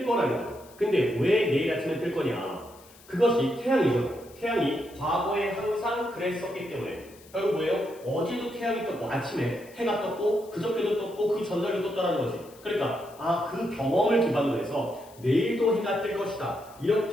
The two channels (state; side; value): noise; left; hiss, 24 dB below the sound